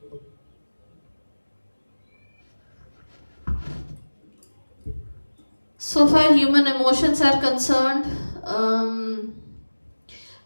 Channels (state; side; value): inverted; both; correlation -1.00